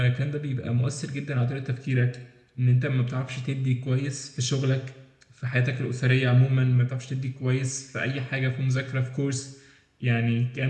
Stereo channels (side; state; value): both; identical; correlation 1.00